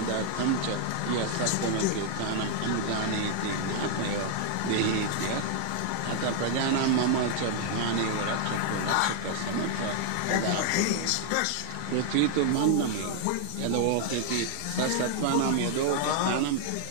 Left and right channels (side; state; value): both; different; correlation -0.01